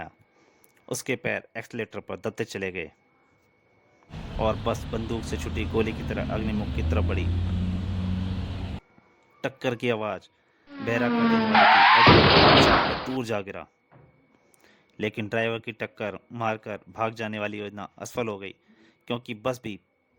उसके पैर एक्सीलेटर पर दबते चले गए और बस बंदूक से छुटी गोली की तरह अग्निमुख की तरफ बढ़ी। टक्कर की आवाज बहरा कर देने वाली थी। अग्निमुख उछलकर दूर जा गिरा। लेकिन ड्राइवर की टक्कर मारकर भाग जाने वाली योजना असफल हो गई, क्योंकि बस भी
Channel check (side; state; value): both; identical; correlation 1.00